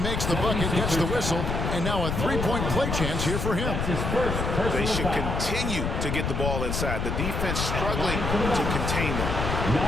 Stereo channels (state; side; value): noise; left; rumble, 1 dB below the sound